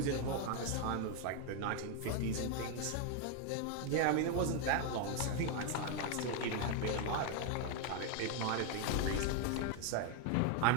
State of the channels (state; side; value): different; both; correlation 0.01